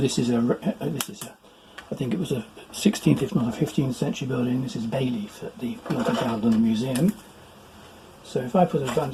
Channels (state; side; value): identical; both; correlation 1.00